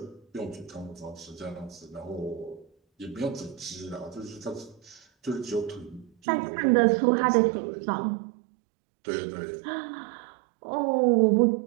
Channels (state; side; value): drops out; left; at 6.1 s